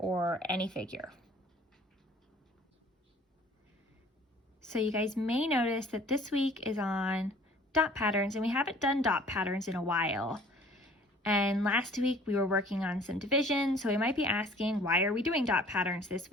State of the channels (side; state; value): both; normal; correlation 0.52